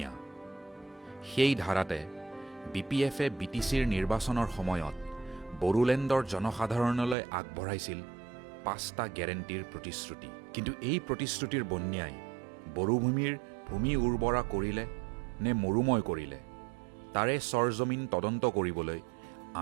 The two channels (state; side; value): drops out; left; at 7.2 s